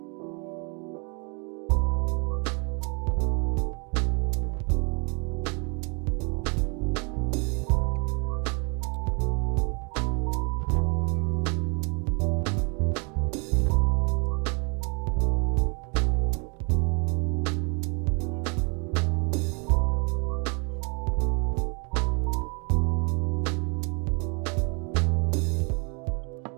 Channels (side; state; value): left; quieter; 34.8 dB